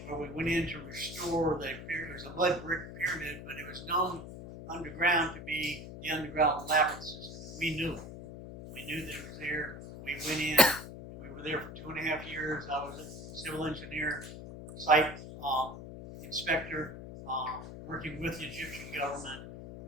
where we went in to restore the pyramid. It was a mud brick pyramid, but it was known underground to be the underground labyrinth system. We knew it. We knew that it was there. We went in. We were there for 2.5 years. I was a civil engineer, site inspector, working with the Egyptian government.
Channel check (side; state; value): left; noise; hum, 11 dB below the sound